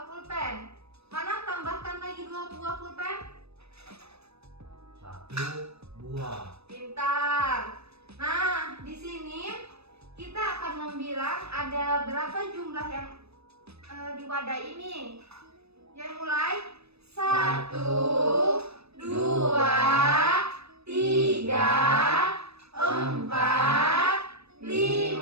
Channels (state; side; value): late; left; 0.79 ms